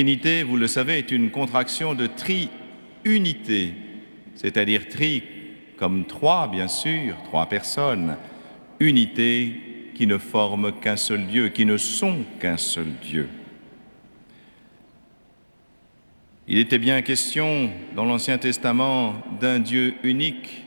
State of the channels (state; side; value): inverted; both; correlation -1.00